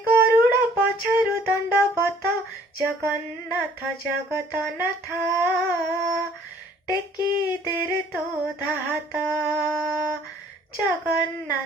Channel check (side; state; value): both; normal; correlation 0.57